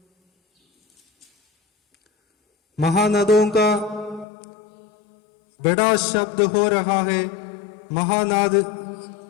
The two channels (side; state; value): right; drops out; at 4.2 s